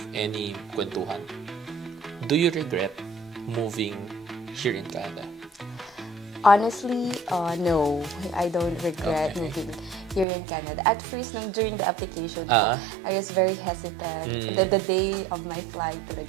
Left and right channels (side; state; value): left; drops out; at 10.2 s